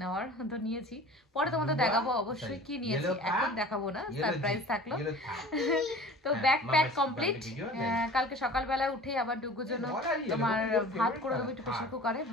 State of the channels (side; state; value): both; normal; correlation 0.42